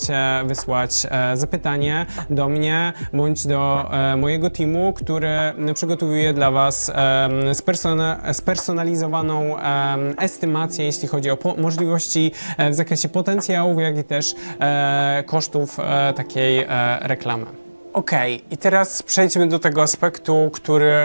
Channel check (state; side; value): inverted; both; correlation -1.00